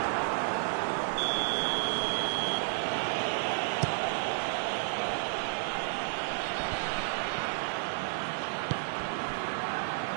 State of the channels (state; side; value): silent; left; 57 dB below the other